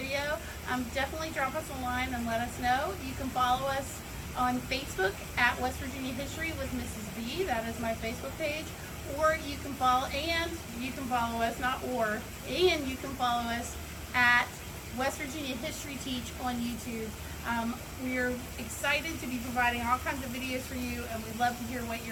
definitely drop us a line and let us know. You can follow us on Facebook at West Virginia History with Mrs. B. That is my Facebook page. Or you can follow us at West Virginia History Teach on YouTube. We're excited to be providing all kinds of videos for you, and we'd love to hear what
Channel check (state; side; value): identical; both; correlation 1.00